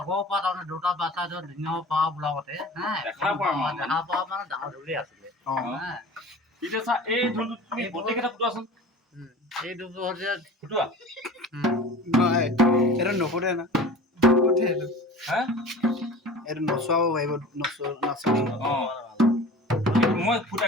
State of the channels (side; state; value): both; normal; correlation 0.39